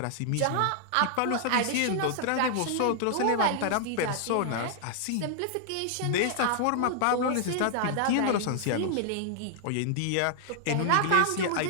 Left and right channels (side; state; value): both; different; correlation -0.01